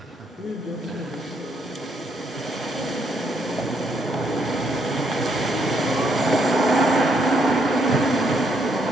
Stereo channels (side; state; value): both; normal; correlation 0.73